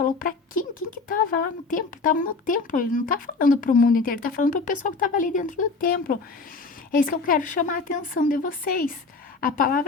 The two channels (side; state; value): right; quieter; 4.0 dB